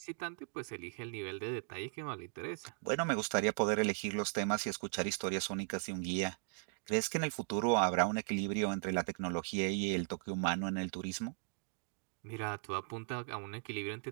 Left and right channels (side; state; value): left; silent; 53 dB below the other